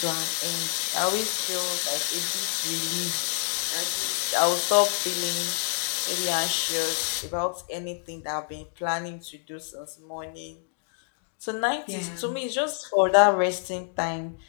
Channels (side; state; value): right; silent; digital silence